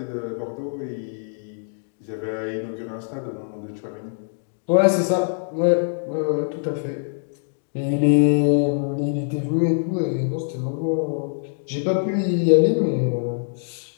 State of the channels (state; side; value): silent; right; digital silence